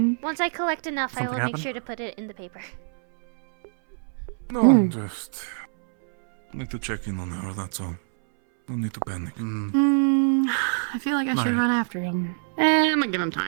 Once I collect enough, I will Something make happened? sure to put it in the paper. No, Hmm. just need to check in on her, that's all. No need to panic. I feel like I should No. run after him. I'm gonna give him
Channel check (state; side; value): silent; left; 62 dB below the other